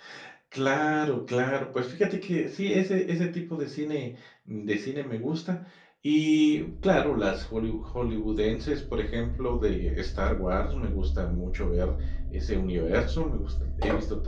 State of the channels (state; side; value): identical; both; correlation 1.00